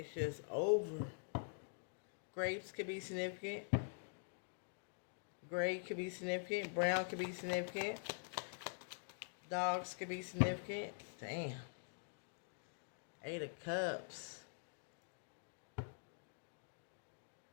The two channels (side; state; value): right; silent; digital silence